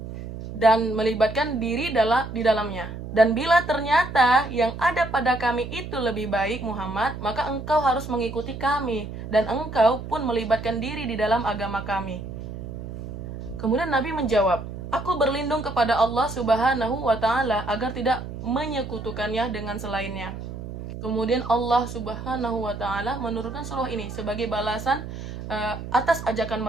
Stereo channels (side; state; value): right; noise; hum, 9 dB below the sound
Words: dan melibatkan diri di dalamnya. Dan bila ternyata yang ada pada kami itu lebih baik, Muhammad, maka engkau harus mengikuti kami, dan engkau pun melibatkan diri di dalam agama kami. Kemudian Nabi menjawab, aku berlindung kepada Allah Subhanahu wa Ta'ala agar tidak menyekutukannya dengan selainnya. Kemudian Allah Subhanahu wa Ta'ala menurunkan surah ini sebagai balasan atas ajakan